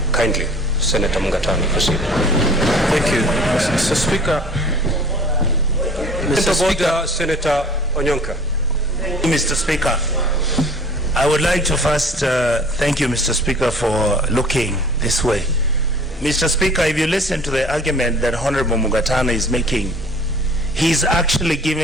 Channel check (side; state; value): both; normal; correlation 0.48